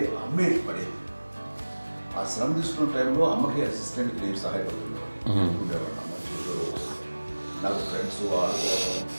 అమ్మే పడేది. ఆ శ్రమ తీసుకున్న టైంలో అమ్మకి అసిస్టెంట్కి నేను సహాయపడుతుండేవాడు ఉండేవాడు. అమ్మ నాకు ఫ్రెండ్స్ ఆడుకోవడం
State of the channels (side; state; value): both; inverted; correlation -1.00